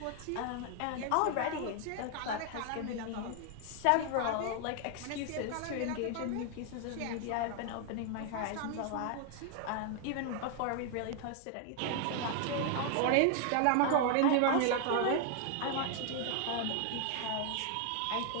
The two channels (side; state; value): both; different; correlation 0.00